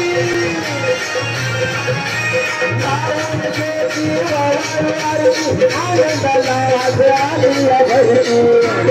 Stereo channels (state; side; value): identical; both; correlation 1.00